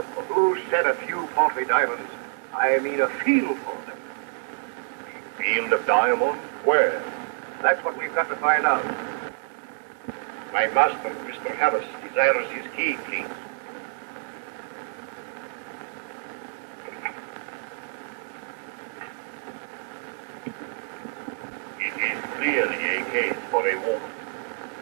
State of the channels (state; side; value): silent; left; 60 dB below the other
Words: Who said a few paltry diamonds? I mean a field for them. Field of diamonds? Where? That's what we've got to find out. My master, Mr. Harris, desires his key, please. It is clearly a case for a woman.